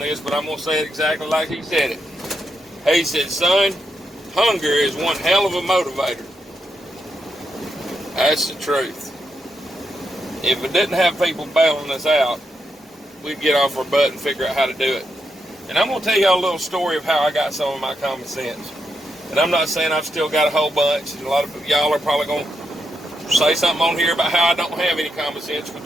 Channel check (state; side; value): normal; both; correlation 0.83